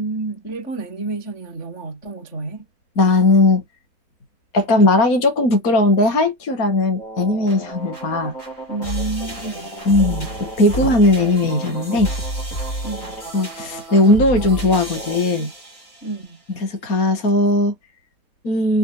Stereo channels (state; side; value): late; right; 4.2 ms